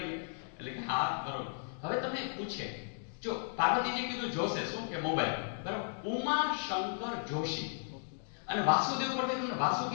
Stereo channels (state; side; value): silent; right; digital silence